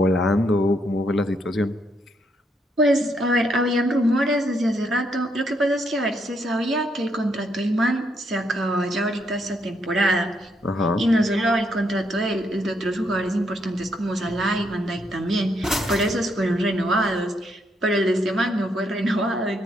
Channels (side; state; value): both; normal; correlation 0.75